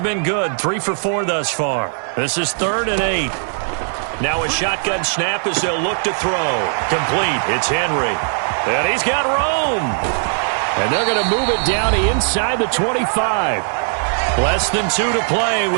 been good. 3 for 4 thus far. This is 3rd and 8. Now a shotgun snap as they'll look to throw. Complete. It's Henry. And he's got room. And they're going to move it down inside the 25. Less than 2 to play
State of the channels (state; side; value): silent; left; 57 dB below the other